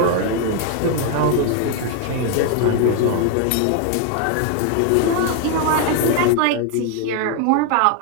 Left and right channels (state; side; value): different; both; correlation 0.01